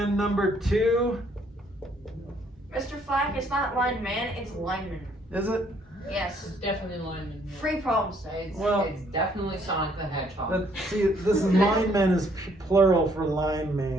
number 2, Mr. Flack, it's not lineman, it's lineman. is it? Yes. It's definitely lineman. Free problem set. It's, Well- it's definitely Sonic the Hedgehog. See, this is lineman is plural for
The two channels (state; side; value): normal; both; correlation 0.66